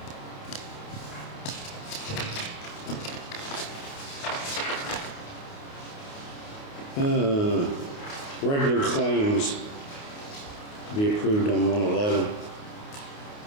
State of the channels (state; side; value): late; right; 28 ms